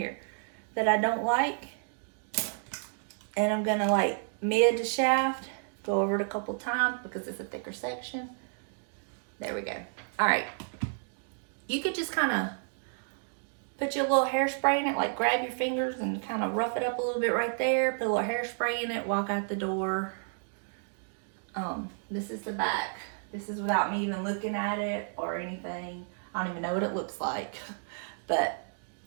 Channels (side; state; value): left; silent; digital silence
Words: that I don't like, and I'm gonna like mid to shaft, go over it a couple times because it's a thicker section. There we go. All right, you could just kind of put your little hairspray in it, like grab your fingers and kind of rough it up a little bit right there, put a little hairspray in it, walk out the door. This is the back. This is without me even looking at it or anything. I don't even know what it looks like, but